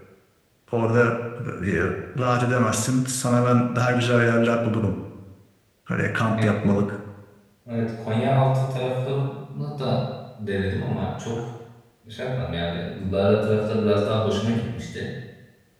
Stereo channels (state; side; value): identical; both; correlation 1.00